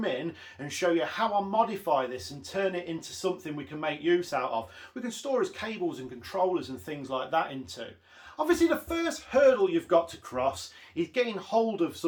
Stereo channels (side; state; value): both; identical; correlation 1.00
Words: in and show you how I modify this and turn it into something we can make use out of. We can store as cables and controllers and things like that into. Obviously, the first hurdle you've got to cross is getting hold of